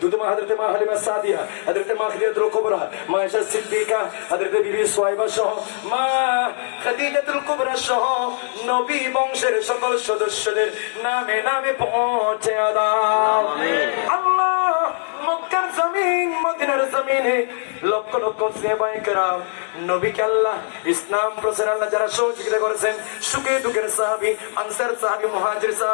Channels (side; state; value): right; silent; 59 dB below the other